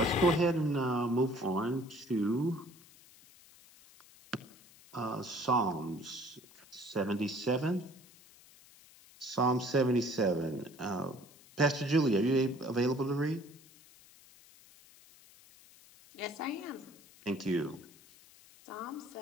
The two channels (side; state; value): left; noise; hiss, 24 dB below the sound